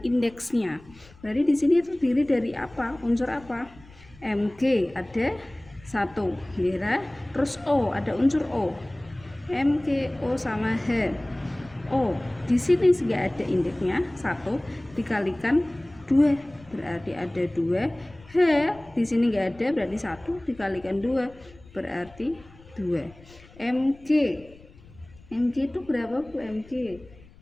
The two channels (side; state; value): left; noise; rumble, 24 dB below the sound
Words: indeksnya. Berarti di sini terdiri dari apa? Unsur apa? Mg ada 1, ya. Terus O, ada unsur O. MgO sama H. O di sini nggak ada indeksnya, 1 dikalikan 2 berarti ada 2. H di sini nggak ada, berarti 1 dikalikan 2 berarti 2. Mg itu berapa Bu? Mg,